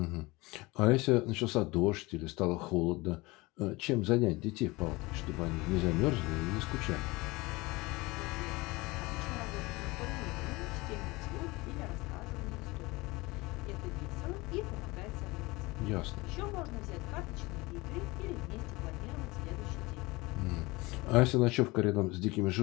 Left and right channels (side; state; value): right; quieter; 22.7 dB